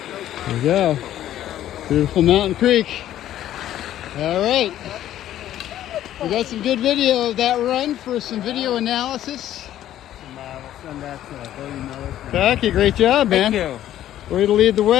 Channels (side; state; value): right; quieter; 12.3 dB